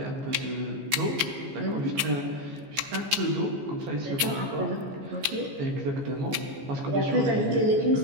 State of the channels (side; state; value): left; late; 15 ms